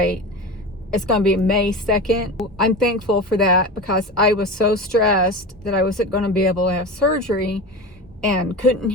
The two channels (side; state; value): both; normal; correlation 0.27